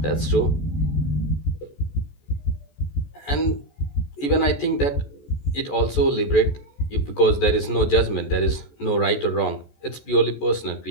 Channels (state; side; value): late; right; 14 ms